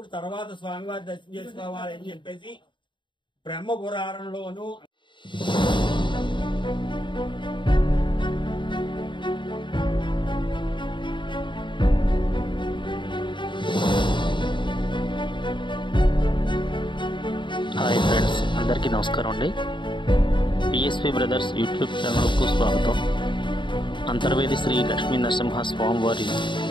తర్వాత స్వామివారి దర్శనం చేసుకోవాలి అని చెప్పేసి బ్రహ్మ పురాణంలోను హాయ్ ఫ్రెండ్స్, అందరికీ నమస్కారం అండి. పిఎస్పి బ్రదర్స్ యూట్యూబ్ ఛానల్కు స్వాగతం. అంతర్వేది శ్రీ లక్ష్మీ నరసింహ స్వామివారి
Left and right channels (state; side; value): late; right; 0.23 ms